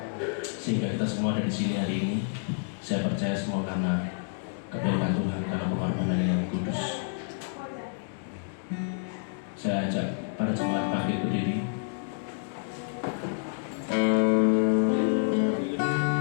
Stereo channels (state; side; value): silent; right; digital silence